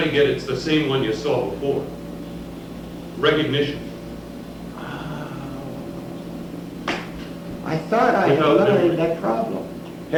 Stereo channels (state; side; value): identical; both; correlation 1.00